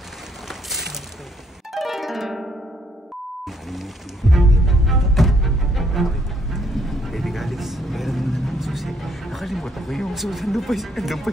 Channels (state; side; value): normal; both; correlation 0.69